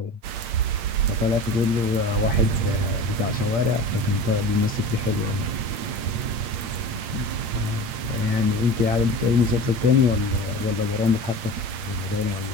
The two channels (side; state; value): left; late; 8.7 ms